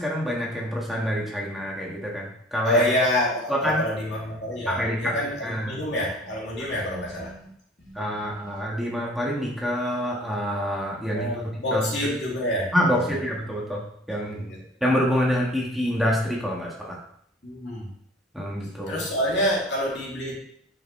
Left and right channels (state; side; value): normal; both; correlation 0.49